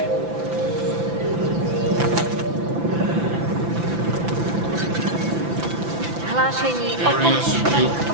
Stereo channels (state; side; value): late; left; 5.9 ms